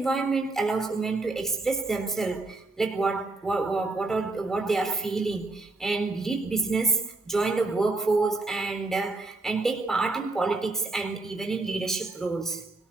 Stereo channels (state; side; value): quieter; left; 3.2 dB